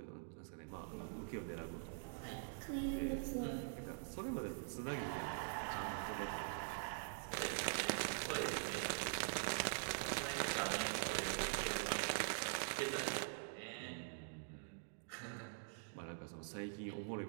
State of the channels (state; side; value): silent; left; digital silence